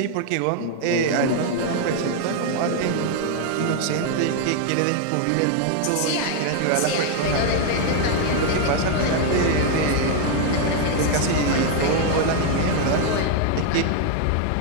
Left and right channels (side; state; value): both; different; correlation 0.01